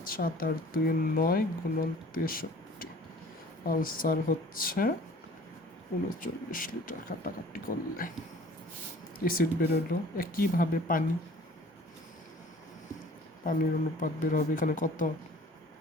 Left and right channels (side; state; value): both; normal; correlation 0.49